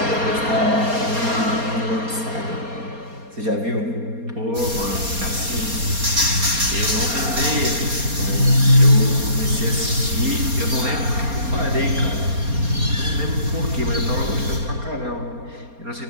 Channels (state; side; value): late; left; 4.3 ms